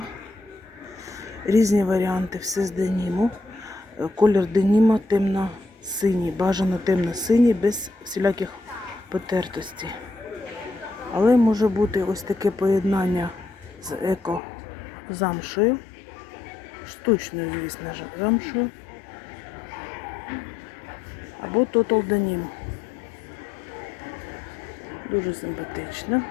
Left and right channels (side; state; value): right; drops out; at 14.4 s